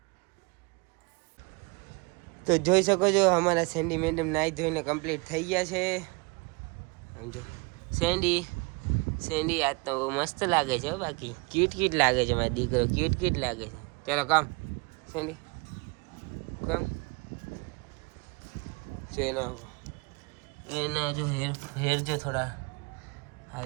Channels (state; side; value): quieter; left; 28.6 dB